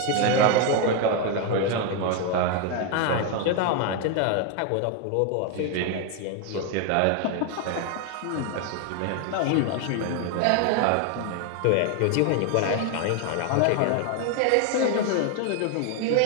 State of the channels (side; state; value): both; different; correlation 0.01